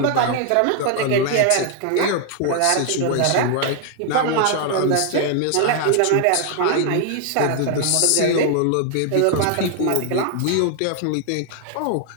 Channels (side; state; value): both; different; correlation 0.00